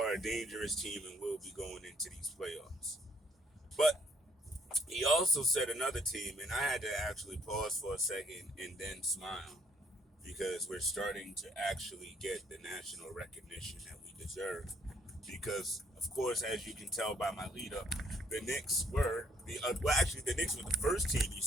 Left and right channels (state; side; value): normal; both; correlation 0.67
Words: a dangerous team and will be going into these playoffs. But he also said another team, and I had to actually pause for a second and then smile because we're starting to actually get the national recognition that we deserve. Because, of course, as you can tell by my lead up, the Knicks were the Knicks were the first team he